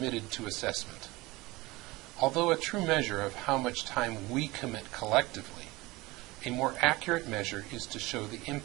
to assessment. Although a true measure of how much time we commit collectively, a more accurate measure is to show the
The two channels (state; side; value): quieter; left; 21.2 dB